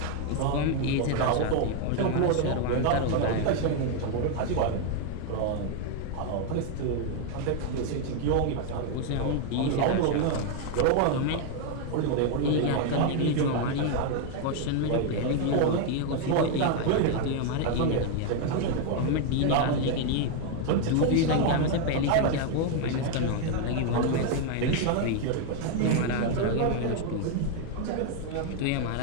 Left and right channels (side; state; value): both; different; correlation 0.01